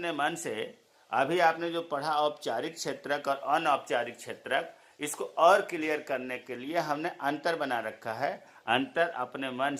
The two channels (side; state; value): both; identical; correlation 1.00